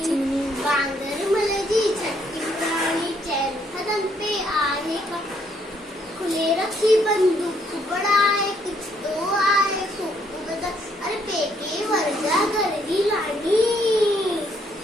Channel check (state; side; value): normal; both; correlation 0.70